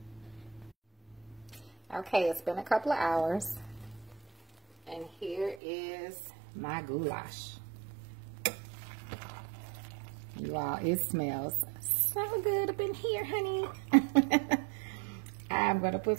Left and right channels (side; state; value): left; drops out; at 5.6 s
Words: Okay, it's been a couple of hours, and here is my goulash. You all, it smells so good up in here, honey. I'm gonna put